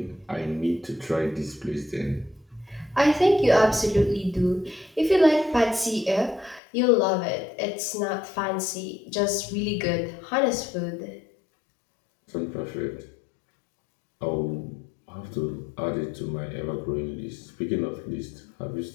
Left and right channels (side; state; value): right; drops out; at 6.6 s